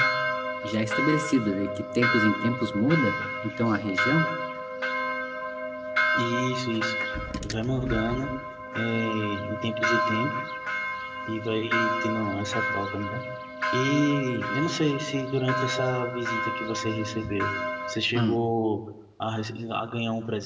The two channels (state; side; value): identical; both; correlation 1.00